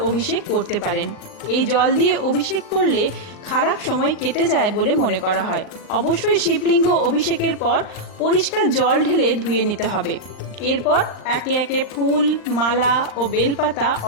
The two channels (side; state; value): right; late; 39 ms